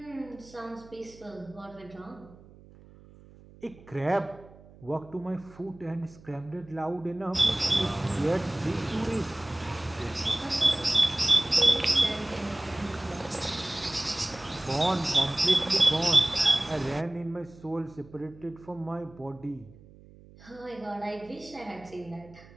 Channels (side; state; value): right; noise; hum, 22 dB below the sound